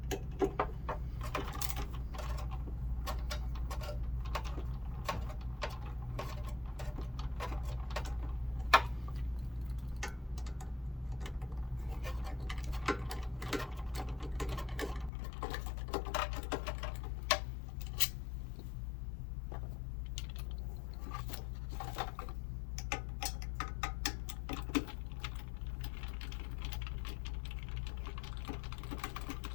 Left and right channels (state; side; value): drops out; right; at 15.1 s